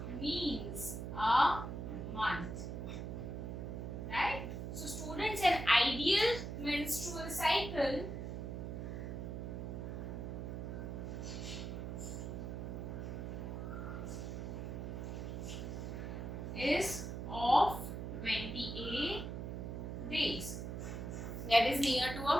means a month, right? So students, an ideal menstrual cycle is of 28 days, that is near to a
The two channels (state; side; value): noise; right; hum, 5 dB below the sound